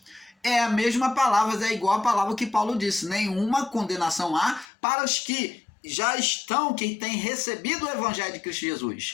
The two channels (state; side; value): drops out; right; at 4.7 s